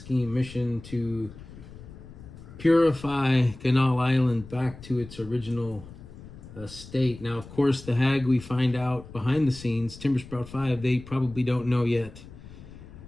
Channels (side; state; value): left; noise; rumble, 17 dB below the sound